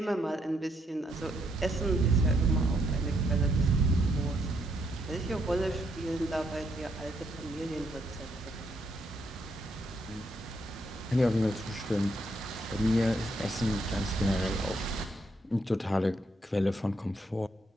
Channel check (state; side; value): normal; both; correlation 0.75